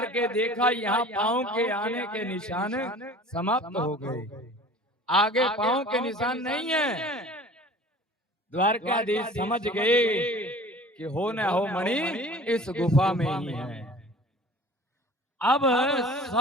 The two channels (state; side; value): normal; both; correlation 0.44